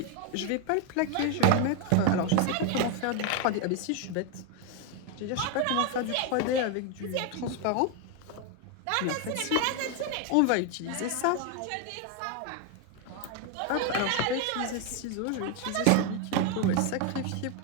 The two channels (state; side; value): different; both; correlation 0.01